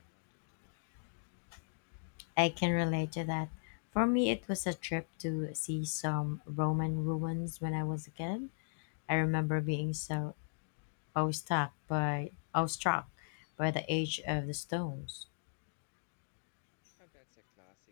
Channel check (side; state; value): right; silent; digital silence